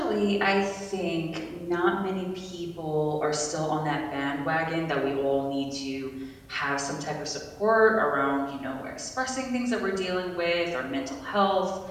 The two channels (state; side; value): identical; both; correlation 1.00